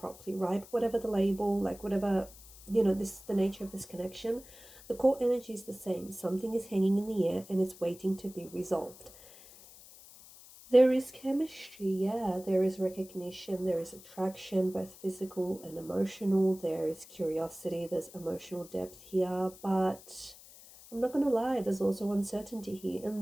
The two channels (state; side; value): noise; left; hiss, 20 dB below the sound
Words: right? Whatever the label, like whatever, this the nature of this connection, the core energy is the same. Something is hanging in the air and it's waiting to be resolved. There is chemistry, yeah, there is recognition, there is attraction, both physical and emotional, there is curiosity, there's emotional depth here, but I'm not going to lie, there's also uncertainty here,